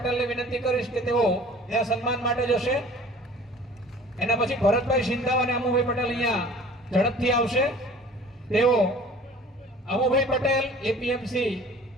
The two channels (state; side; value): normal; both; correlation 0.47